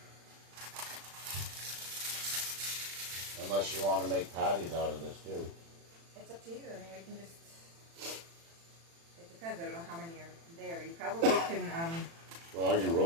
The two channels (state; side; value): late; left; 36 ms